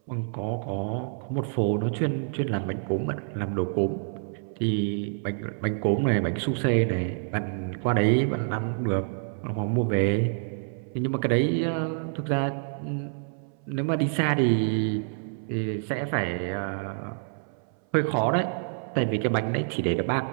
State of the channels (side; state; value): left; silent; 60 dB below the other